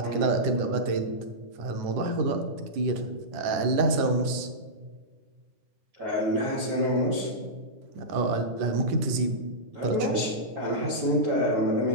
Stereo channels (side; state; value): left; late; 10 ms